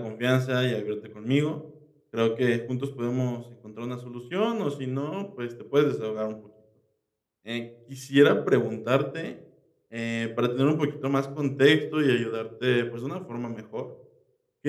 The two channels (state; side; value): identical; both; correlation 1.00